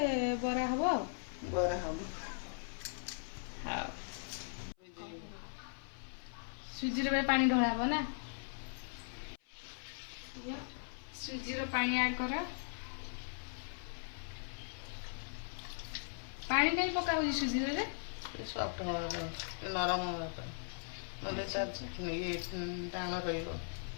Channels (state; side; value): silent; right; 52 dB below the other